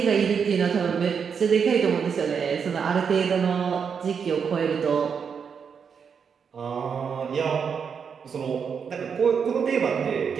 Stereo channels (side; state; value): left; quieter; 6.6 dB